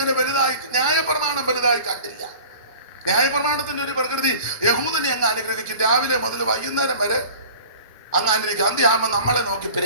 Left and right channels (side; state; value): both; inverted; correlation -0.42